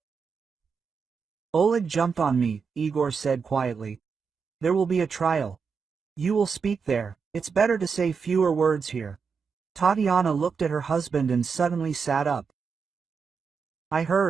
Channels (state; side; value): quieter; left; 5.7 dB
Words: Oleg jumped on me, Igor said quietly. There will be a trial. You will speak there. It's better to say fewer words here. Tatiana looked at her husband and suddenly sat up. I